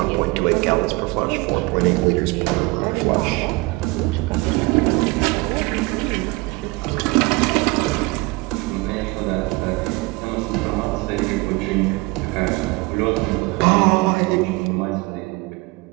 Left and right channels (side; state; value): left; quieter; 24.2 dB